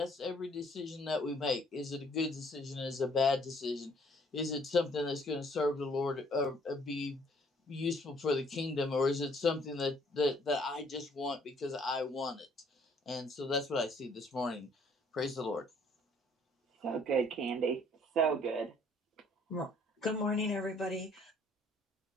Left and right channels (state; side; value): normal; both; correlation 0.62